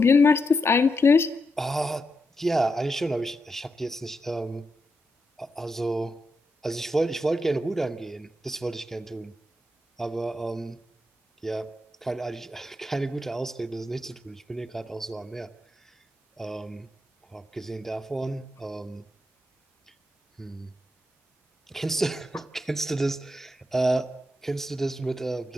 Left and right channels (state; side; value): normal; both; correlation 0.85